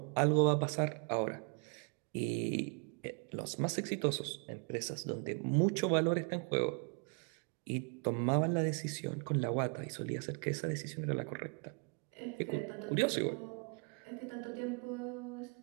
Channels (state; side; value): quieter; left; 38.6 dB